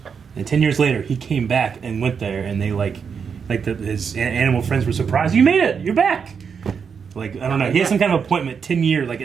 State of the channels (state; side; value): quieter; left; 6.4 dB